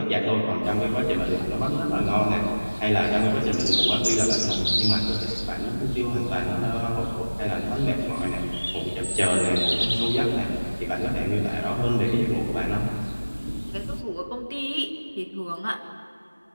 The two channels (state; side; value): inverted; both; correlation -1.00